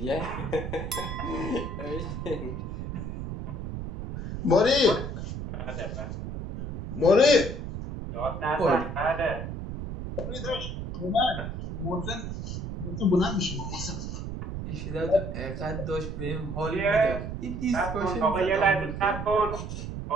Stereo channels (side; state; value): right; noise; rumble, 6 dB below the sound